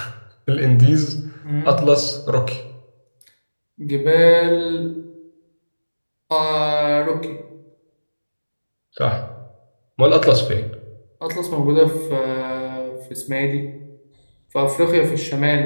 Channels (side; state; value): both; inverted; correlation -1.00